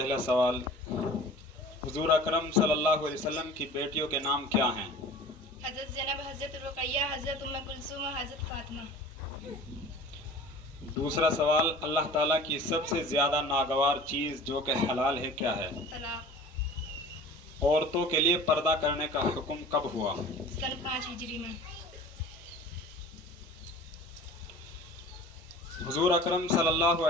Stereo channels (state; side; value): normal; both; correlation 0.42